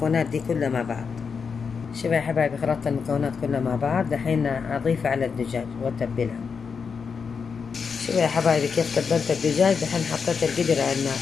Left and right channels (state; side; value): quieter; right; 5.8 dB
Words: دي كلها مع بعض. شوفوا يا حبايبي، خلطت المكونات كلها مع بعض. دحين اضيفها على الدجاج واتبلها. شوفوا يا حبايبي كيف تبلت الدجاج. دحين حطيت القدر على النار.